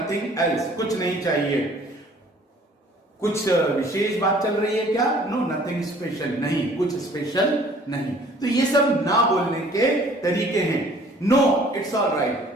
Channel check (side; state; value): both; normal; correlation 0.54